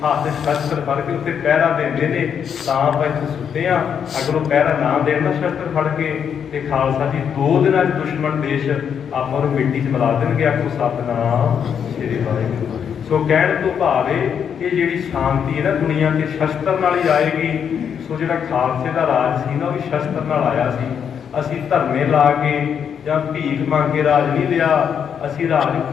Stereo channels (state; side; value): quieter; right; 7.8 dB